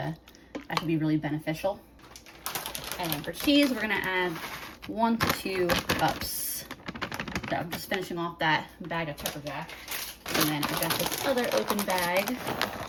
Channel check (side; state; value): both; identical; correlation 1.00